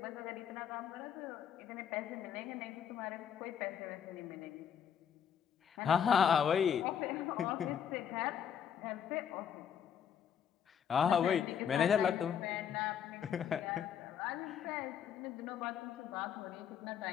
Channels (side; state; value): right; quieter; 8.3 dB